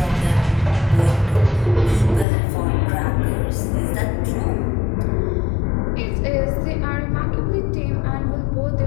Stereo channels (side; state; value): right; drops out; at 2.2 s